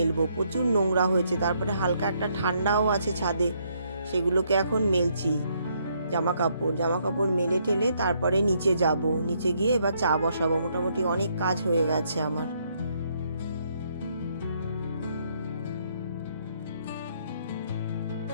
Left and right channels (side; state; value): both; inverted; correlation -0.72